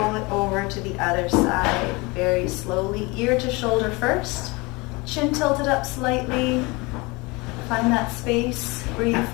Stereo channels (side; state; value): right; quieter; 25.5 dB